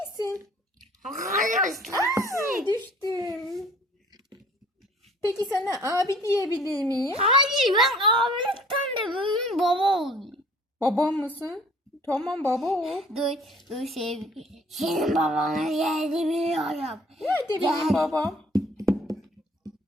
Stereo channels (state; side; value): normal; both; correlation 0.54